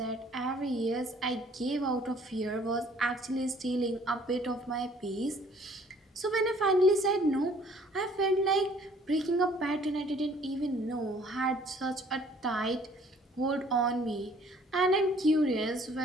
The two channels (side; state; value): both; normal; correlation 0.57